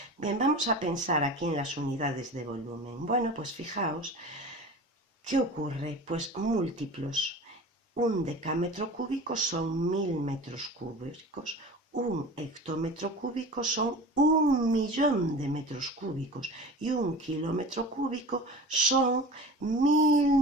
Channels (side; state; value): both; normal; correlation 0.36